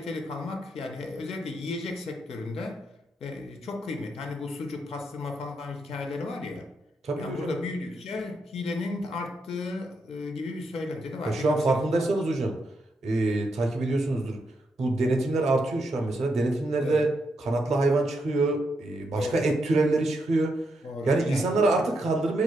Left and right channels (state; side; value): normal; both; correlation 0.81